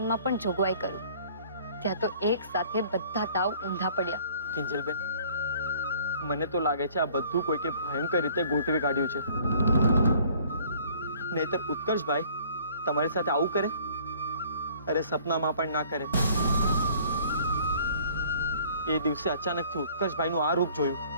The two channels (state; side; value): inverted; both; correlation -0.54